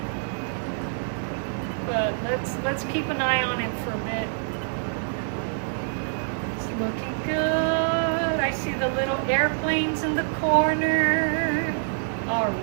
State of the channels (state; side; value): silent; left; 57 dB below the other